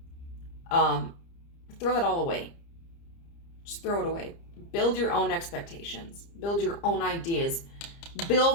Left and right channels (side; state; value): right; late; 30 ms